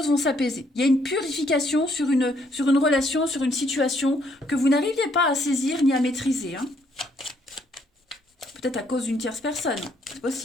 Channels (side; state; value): both; normal; correlation 0.69